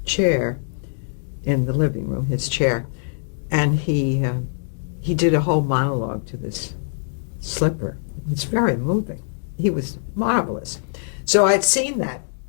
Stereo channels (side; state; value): right; silent; digital silence